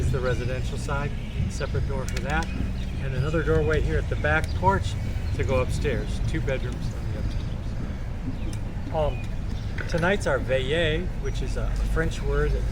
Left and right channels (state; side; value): identical; both; correlation 1.00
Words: the residential side, separate door for that. And another doorway here at the back porch to go upstairs. 2 bedrooms on the upstairs. Tonight's our Valle, which is a French word that